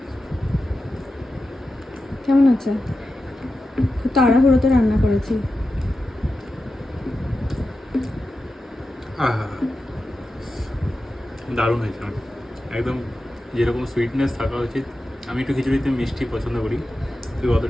কেমন আছে? খুব তাড়াহুড়োতে রান্না করেছি। দারুণ হয়েছে, একদম যেরকম সুইটনেস থাকা উচিত। আমি একটু খিচুড়িতে মিষ্টি পছন্দ করি, তুই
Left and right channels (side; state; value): both; normal; correlation 0.92